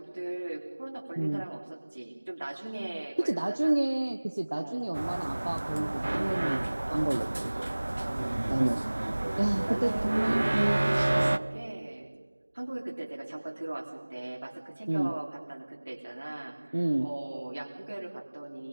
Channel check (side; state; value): both; inverted; correlation -1.00